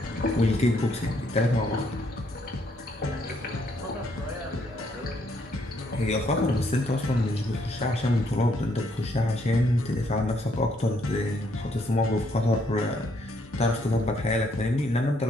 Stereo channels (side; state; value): both; normal; correlation 0.71